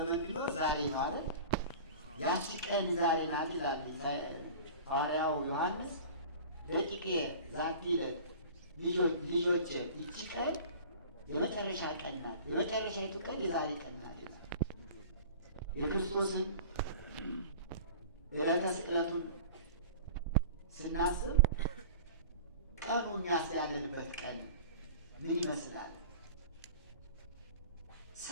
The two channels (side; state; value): both; inverted; correlation -0.39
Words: ቢኖር ዛሬ ማለት ያቺ ቀን ዛሬ ናት ይላል ሐዋርያው ዮሐንስ። ደቂቄ ዛቲ ዕለት ልጆቼ ይቺ ቀን የመጨረሻ ቀን ናት፣ የመጨረሻይቱ ቀን የዛሬ ቀን ናት። የክርስቶስን ዕለተ ስቅለቱን ስናስብ ቀኑ እኛስ ያለንበት ቀን ምን ይመስላል?